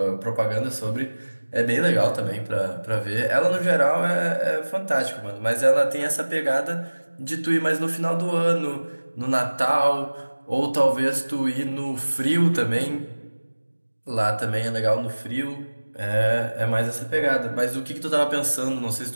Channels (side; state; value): both; inverted; correlation -1.00